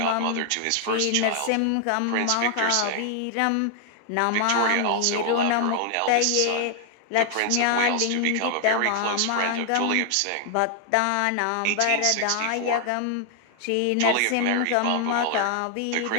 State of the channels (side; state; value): both; different; correlation 0.00